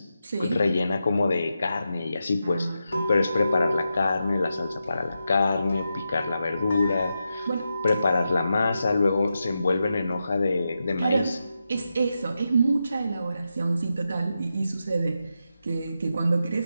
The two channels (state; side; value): inverted; both; correlation -0.88